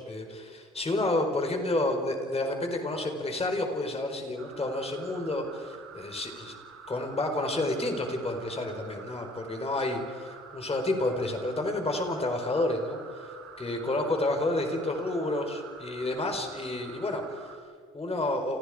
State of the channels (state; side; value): normal; both; correlation 0.56